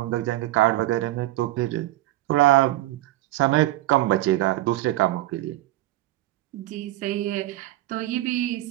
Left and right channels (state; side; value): quieter; left; 16.3 dB